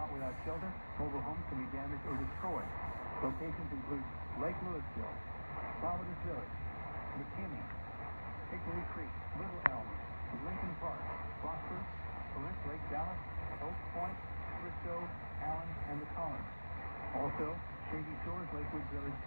without shelter. Mobile homes can be damaged or destroyed. Locations include Lake Louisville, Providence Village, McKinney, Hickory Creek, Little Elm, Lincoln Park, Prosper, Corinth Lake, Dallas, Oak Point, Frisco, Allen, and the Collins. Also, Shady Shores, Lakewood Village,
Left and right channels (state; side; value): inverted; both; correlation -1.00